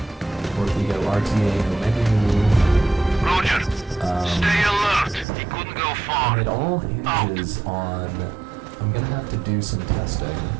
or if we go RTA no menu. Roger. Stay alert. He couldn't go far. And it all hinges on, I'm gonna have to do some testing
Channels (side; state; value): left; drops out; at 5.2 s